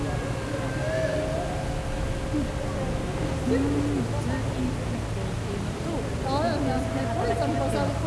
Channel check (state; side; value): identical; both; correlation 1.00